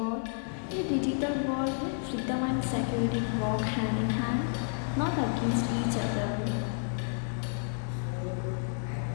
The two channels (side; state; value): right; silent; digital silence